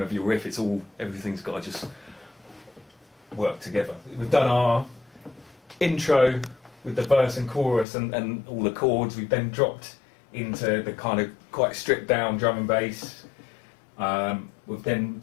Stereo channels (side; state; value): right; drops out; at 7.9 s